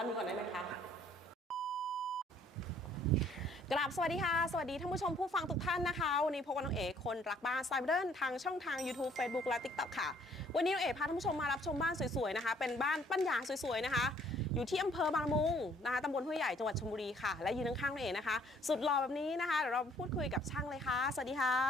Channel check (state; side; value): normal; both; correlation 0.61